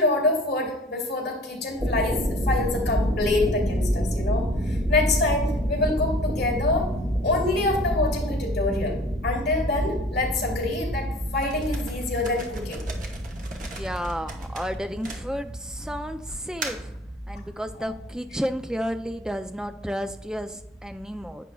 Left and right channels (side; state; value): both; normal; correlation 0.48